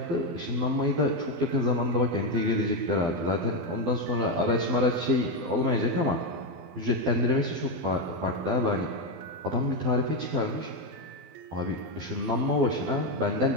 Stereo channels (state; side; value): late; left; 12 ms